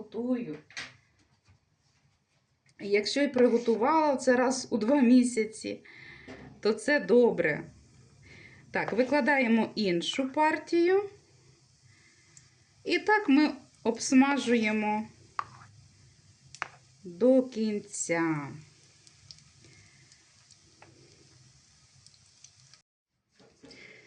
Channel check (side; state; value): both; identical; correlation 1.00